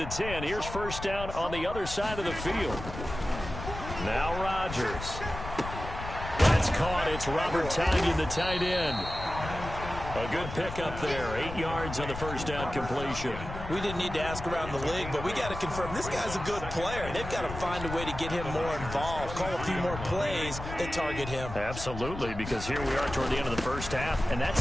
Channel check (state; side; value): noise; left; rumble, 9 dB below the sound